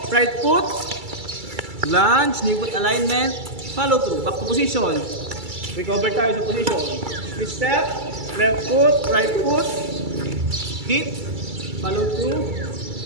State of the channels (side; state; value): left; late; 2.3 ms